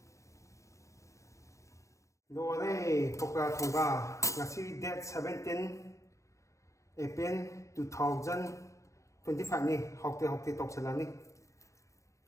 rồi Pakora Thongba ngasi date 17 April 2025 ni haote tok chalani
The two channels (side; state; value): right; late; 0.15 ms